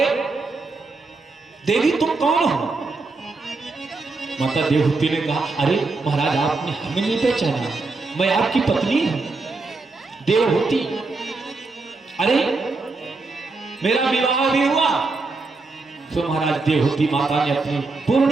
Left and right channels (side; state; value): left; quieter; 3.7 dB